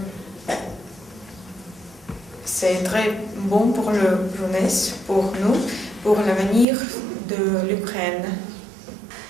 c'est très bon pour la jeunesse, pour nous, pour l'avenir de l'Ukraine.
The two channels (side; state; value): left; drops out; at 6.7 s